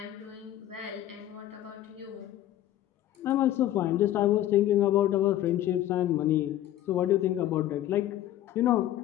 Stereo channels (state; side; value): quieter; right; 13.1 dB